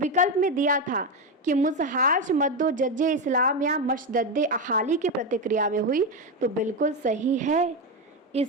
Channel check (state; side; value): normal; both; correlation 0.11